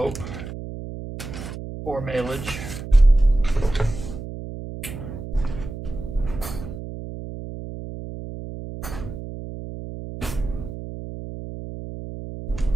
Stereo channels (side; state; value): right; noise; hum, 9 dB below the sound